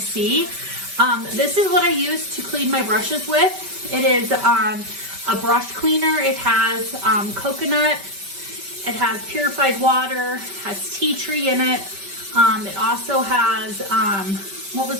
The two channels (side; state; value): left; late; 5.2 ms